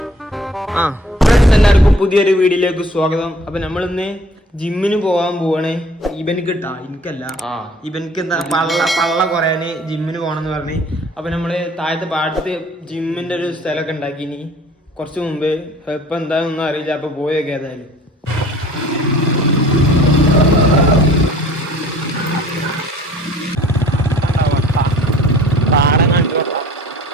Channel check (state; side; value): normal; both; correlation 0.52